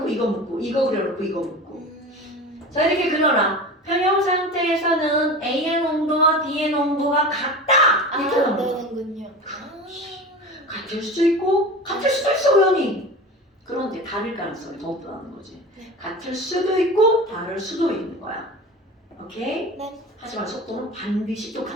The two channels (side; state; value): both; normal; correlation 0.32